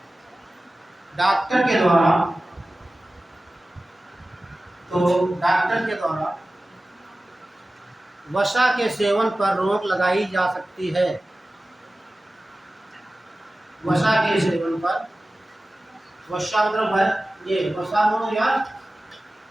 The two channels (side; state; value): both; normal; correlation 0.96